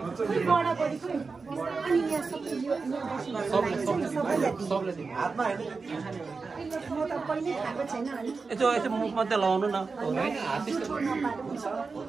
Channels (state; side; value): quieter; left; 4.4 dB